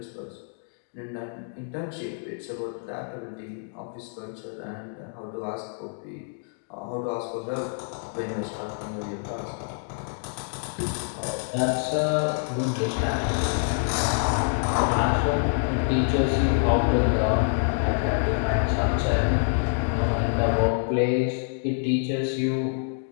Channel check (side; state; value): right; silent; 60 dB below the other